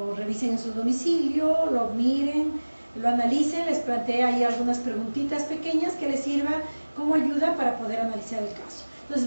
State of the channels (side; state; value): both; inverted; correlation -1.00